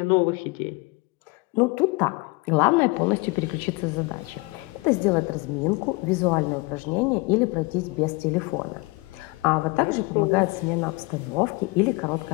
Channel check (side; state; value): right; quieter; 25.9 dB